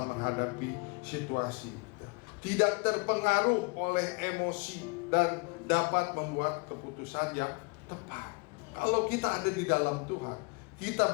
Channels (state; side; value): quieter; right; 28.7 dB